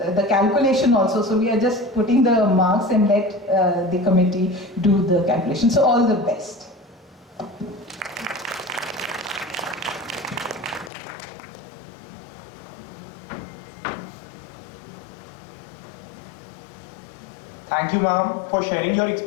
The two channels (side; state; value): right; drops out; at 10.9 s